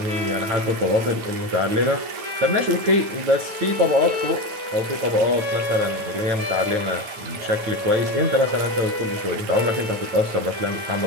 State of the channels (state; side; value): late; left; 9.5 ms